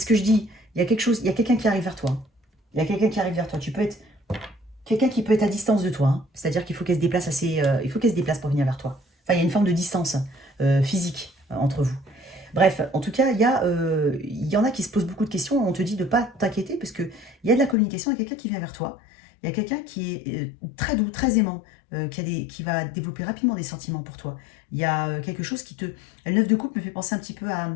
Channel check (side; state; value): right; drops out; at 17.8 s